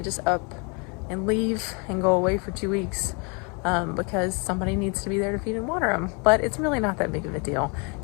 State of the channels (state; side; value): quieter; right; 33.3 dB